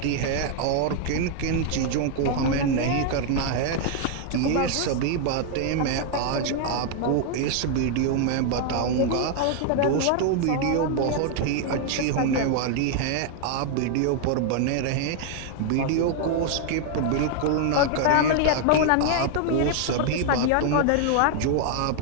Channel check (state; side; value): different; both; correlation 0.00